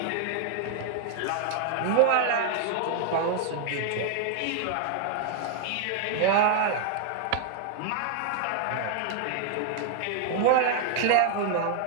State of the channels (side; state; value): both; different; correlation 0.00